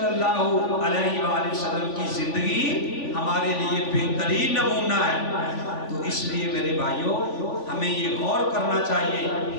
اللہ علیہ وآلہ وسلم کی زندگی ہمارے لیے بہترین نمونہ ہے. تو اس لیے میرے بھائیوں ہمیں یہ غور کرنا چاہیے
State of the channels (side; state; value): right; late; 3.5 ms